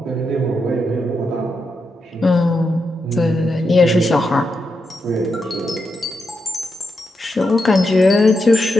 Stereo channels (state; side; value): normal; both; correlation 0.85